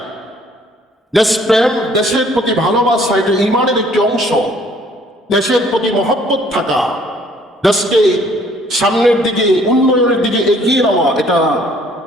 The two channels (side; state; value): both; normal; correlation 0.60